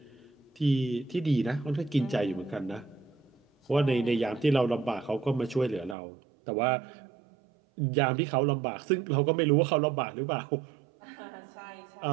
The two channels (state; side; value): drops out; left; at 6.0 s